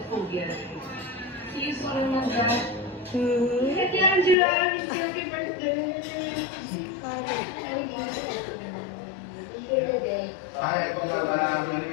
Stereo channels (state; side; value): drops out; right; at 4.4 s